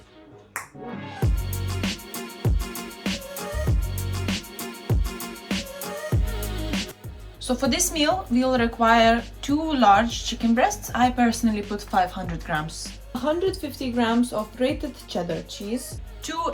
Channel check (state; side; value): identical; both; correlation 1.00